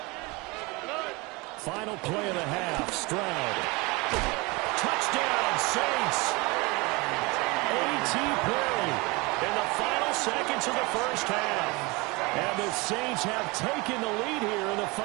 Final play of the half. Stroud. Touchdown, Saints. A.T. play in the final seconds of the first half. And the Saints have taken the lead here in the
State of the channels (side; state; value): left; quieter; 25.5 dB